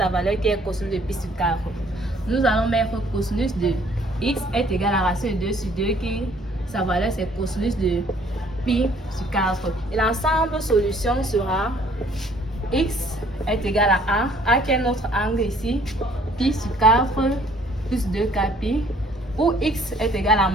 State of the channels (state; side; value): normal; both; correlation 0.60